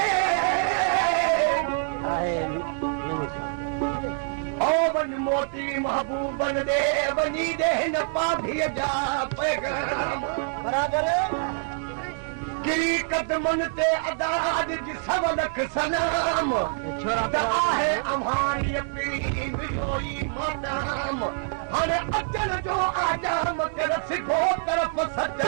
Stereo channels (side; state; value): left; silent; 61 dB below the other